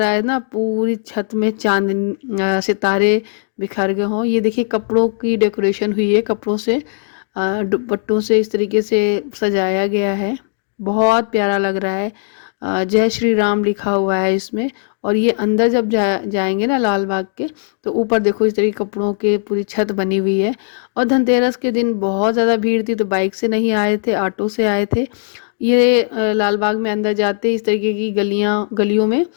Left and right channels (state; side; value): silent; right; digital silence